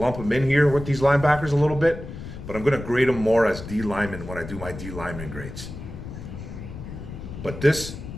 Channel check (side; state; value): left; noise; rumble, 11 dB below the sound